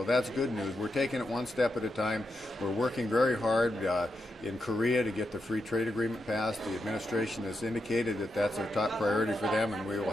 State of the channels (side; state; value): both; normal; correlation 0.85